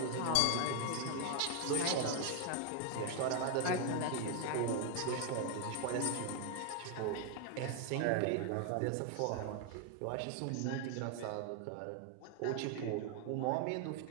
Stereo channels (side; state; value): both; different; correlation 0.00